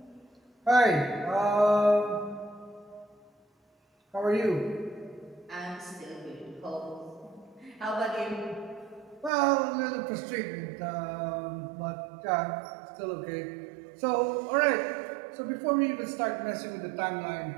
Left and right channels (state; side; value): drops out; left; at 9.3 s